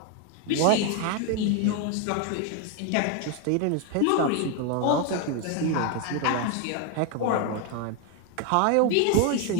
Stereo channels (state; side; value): different; both; correlation 0.01